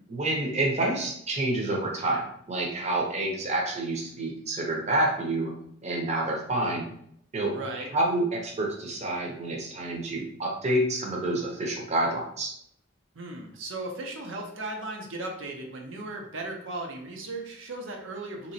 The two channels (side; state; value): both; normal; correlation 0.07